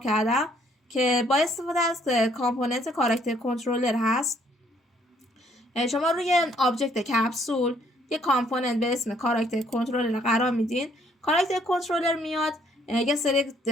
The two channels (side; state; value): both; normal; correlation 0.66